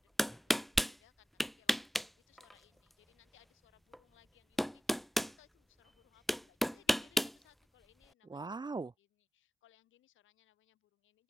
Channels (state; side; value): normal; both; correlation 0.97